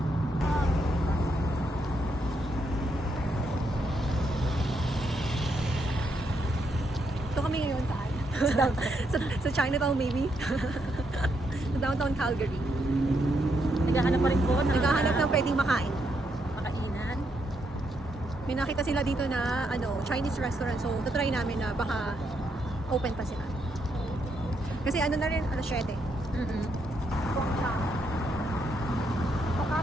Ito kami ngayon saan? sa Chinatown maybe? Sa downtown Calgary. Naghahanap pa rin po ng Naghahanap ng pwedeng makain. makainan. May nakita sila dito na ano, Chinese restaurant. So, try namin na baka open pa sila. Kasi ano na rin, alas 7.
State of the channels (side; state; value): both; normal; correlation 0.78